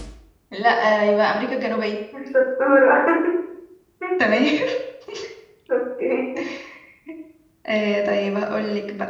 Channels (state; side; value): identical; both; correlation 1.00